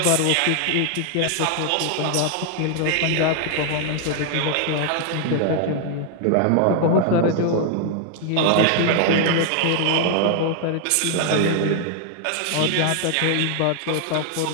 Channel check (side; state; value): both; different; correlation 0.00